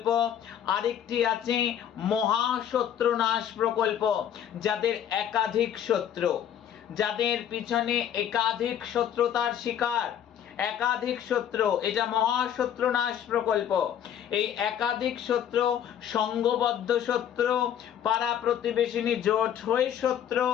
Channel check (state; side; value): quieter; right; 9.7 dB